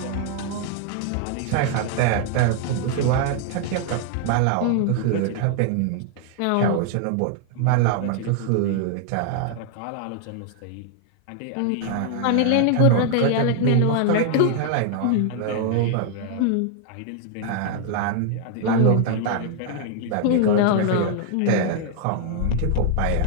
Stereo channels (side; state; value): both; different; correlation 0.00